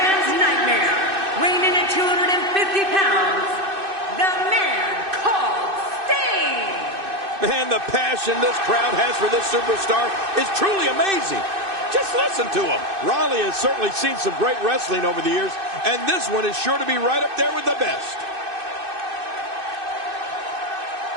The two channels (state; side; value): late; left; 2.6 ms